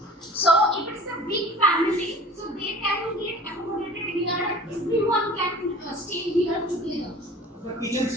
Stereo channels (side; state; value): both; normal; correlation 0.43